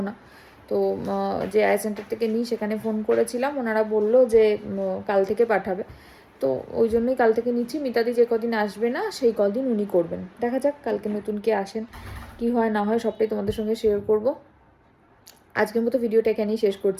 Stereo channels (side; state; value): both; identical; correlation 1.00